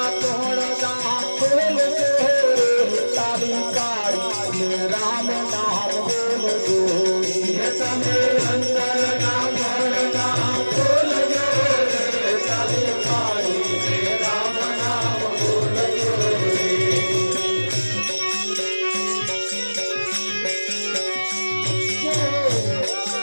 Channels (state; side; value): inverted; both; correlation -1.00